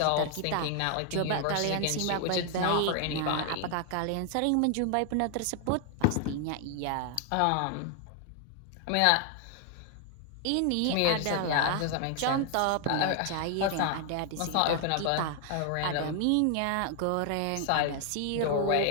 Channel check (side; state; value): both; different; correlation 0.00